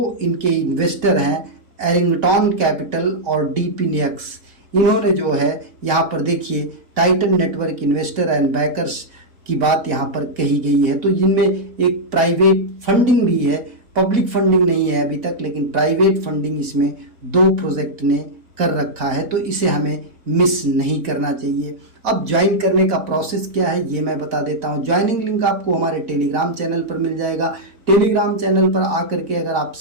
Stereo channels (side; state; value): left; late; 4.1 ms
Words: इनके इन्वेस्टर हैं, एरिंगटन कैपिटल और DPNX। इन्होंने जो है यहाँ पर देखिए Titan network investor and bakers की बात यहाँ पर कही गई है। तो इनमें एक प्राइवेट फंडिंग भी है, पब्लिक फंडिंग नहीं है अभी तक, लेकिन प्राइवेट फंडिंग इसमें 2 प्रोजेक्ट ने कर रखा है। तो इसे हमें मिस नहीं करना चाहिए। अब ज्वाइन करने का प्रोसेस क्या है ये मैं बता देता हूँ। ज्वाइनिंग लिंक आपको हमारे टेलीग्राम चैनल पर मिल जाएगा। टेलीग्राम चैनल पर आकर के अगर आप